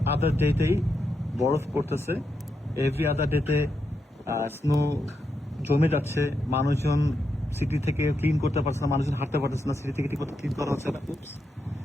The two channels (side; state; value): both; normal; correlation 0.84